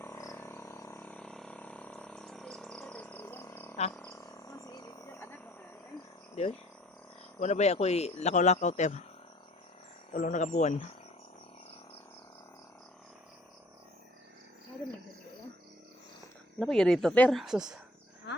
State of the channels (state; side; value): normal; both; correlation 0.54